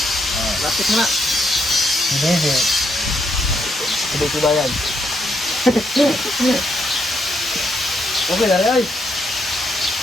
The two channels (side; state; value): both; normal; correlation 0.77